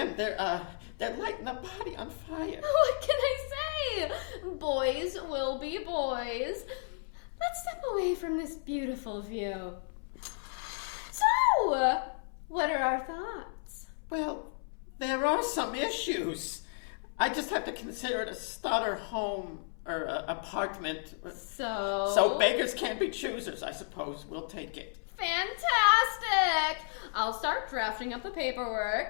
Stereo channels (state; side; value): silent; right; 56 dB below the other